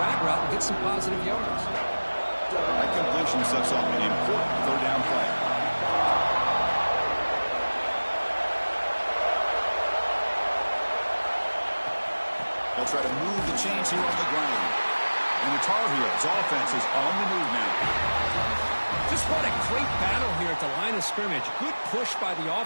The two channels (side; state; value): both; inverted; correlation -1.00